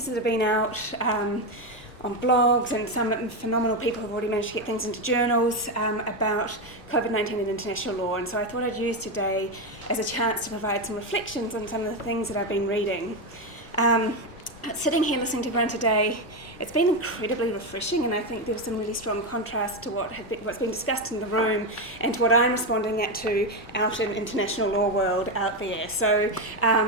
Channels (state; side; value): normal; both; correlation 0.10